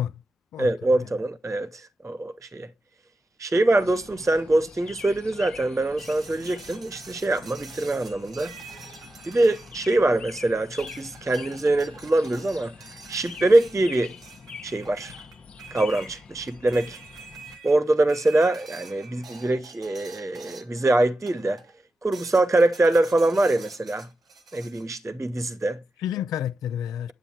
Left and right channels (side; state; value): both; normal; correlation 0.91